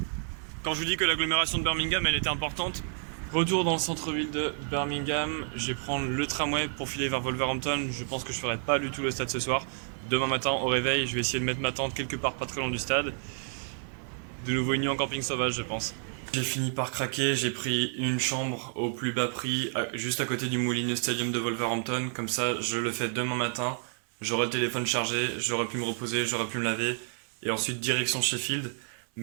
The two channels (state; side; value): silent; left; 56 dB below the other